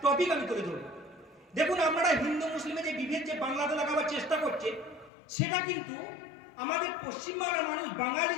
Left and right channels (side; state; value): right; drops out; at 5.1 s